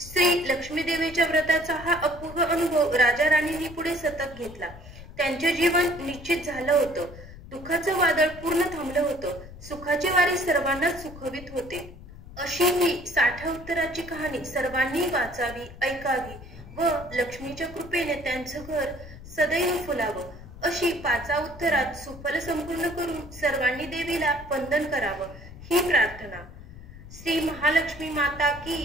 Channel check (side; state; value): left; noise; rumble, 16 dB below the sound